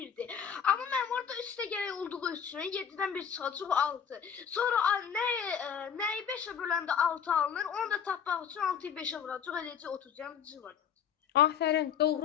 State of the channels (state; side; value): quieter; right; 7.7 dB